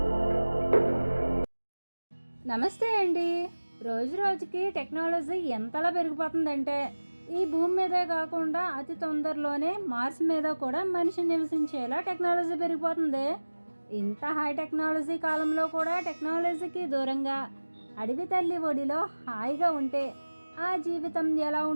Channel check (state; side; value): inverted; both; correlation -1.00